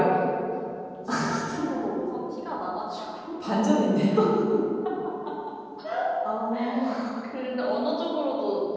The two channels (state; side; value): identical; both; correlation 1.00